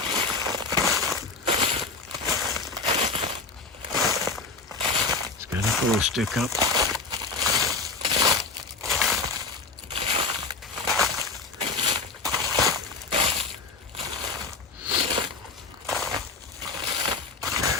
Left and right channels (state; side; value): quieter; right; 4.2 dB